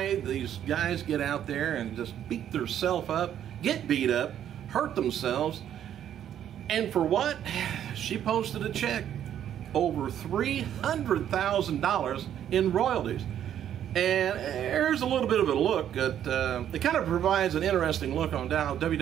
these guys get out there and just beat themselves up, get beat up, hurt themselves. And for what? She posted a check over $300,000 in royalties. And here's a little bit of a look at, it kind of provides an interesting look on how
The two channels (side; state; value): left; quieter; 10.2 dB